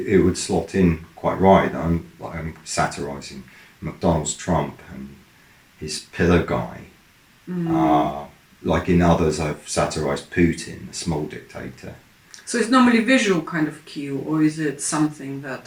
would slot in quite right. I'm satirising McDonald's Trump and his pillar guy. Like in others, I've satirised Putin, the small dictator. So it's normally visual kind of cue, or is it something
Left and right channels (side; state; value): both; identical; correlation 1.00